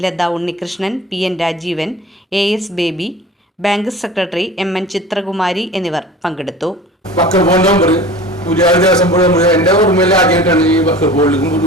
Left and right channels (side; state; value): both; normal; correlation 0.39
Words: Latha Unnikrishnan, PN Rajeevan, AS Baby, bank secretary MN Chithrakumari എന്നിവർ പങ്കെടുത്തു. ദേവസ്വം ബോർഡ് എൻ്റെ ഓർമ്മയിൽ ആദ്യമായിട്ടാണ് ഈ ബോർഡിലേക്കും